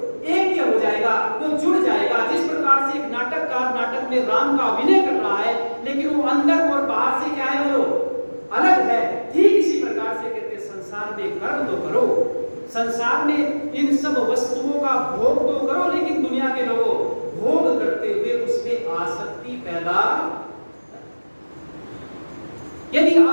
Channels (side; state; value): both; inverted; correlation -1.00